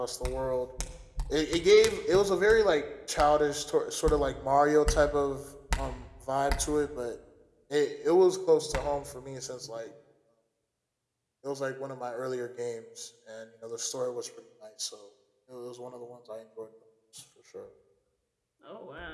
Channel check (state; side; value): identical; both; correlation 1.00